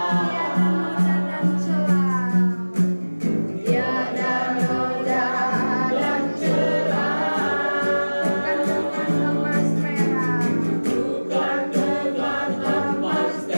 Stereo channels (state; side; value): inverted; both; correlation -1.00